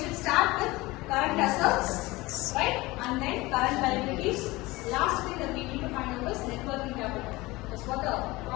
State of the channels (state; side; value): quieter; right; 20.9 dB